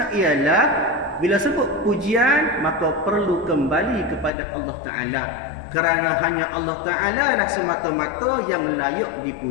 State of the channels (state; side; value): drops out; right; at 4.3 s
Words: ialah bila sebut pujian maka perlu kembali kepada Allah Ta'ala. Kerana hanya Allah Ta'ala lah semata-mata yang layak